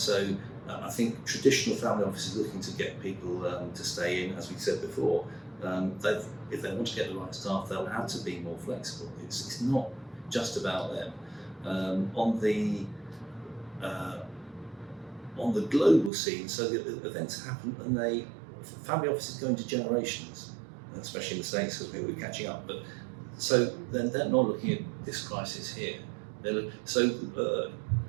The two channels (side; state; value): left; drops out; at 16.1 s